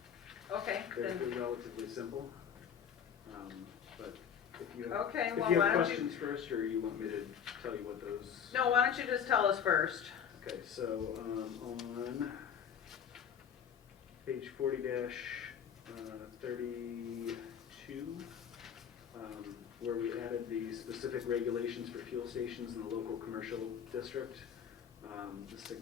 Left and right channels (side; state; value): right; quieter; 8.1 dB